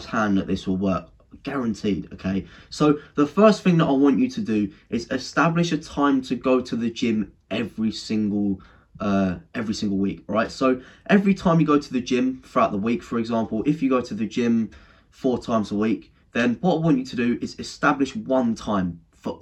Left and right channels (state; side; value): identical; both; correlation 1.00